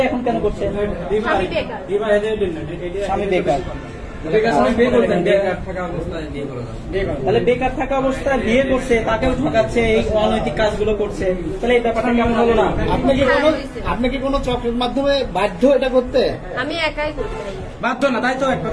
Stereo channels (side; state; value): both; identical; correlation 1.00